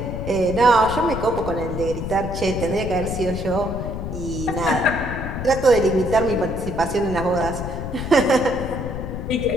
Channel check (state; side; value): noise; left; rumble, 6 dB below the sound